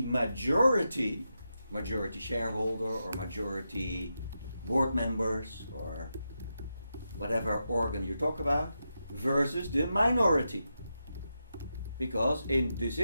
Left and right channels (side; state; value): both; inverted; correlation -0.87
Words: majority shareholder or majority board members or whatever organ you talk about, versus the minority. Because in